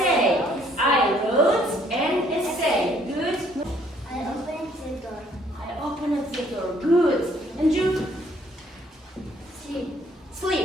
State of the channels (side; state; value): both; normal; correlation 0.64